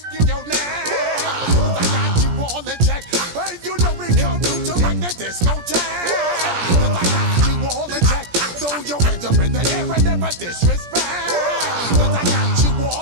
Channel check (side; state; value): left; late; 17 ms